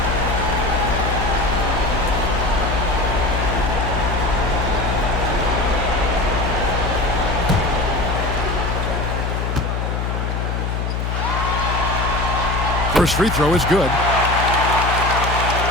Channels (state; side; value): noise; left; hum, 1 dB below the sound